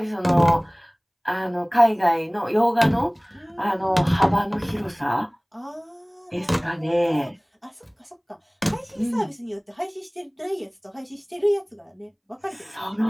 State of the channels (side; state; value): both; identical; correlation 1.00